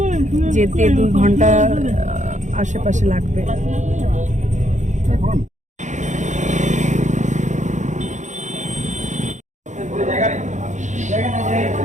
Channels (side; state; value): left; late; 0.35 ms